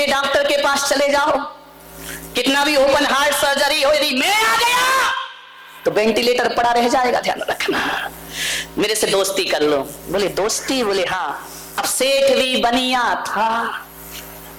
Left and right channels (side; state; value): both; identical; correlation 1.00